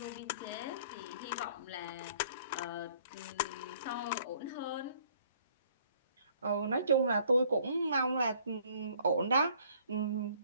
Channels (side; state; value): both; inverted; correlation -0.59